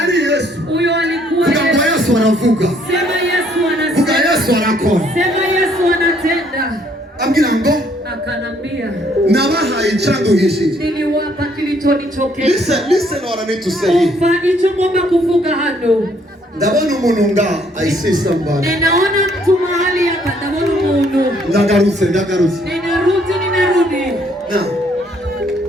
Yesu. Huyo alikuwa Yesu. Vuga Yesu anavuga. Sema Yesu anasema. Vuga Yesu anakora. Sema Yesu anatenda. Ambwira ngo akanambia nabahaye icyanduhishije. Niliwapa kilichonichokesha. Listen what I need to say. Umva icyo ngomba kuvuga hano. Ndabona umuntu nga I see somebody. Ninaona mtu mahali hapa, ndabona umuntu. Ndagarutse. Ninarudi. Na.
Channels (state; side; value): normal; both; correlation 0.66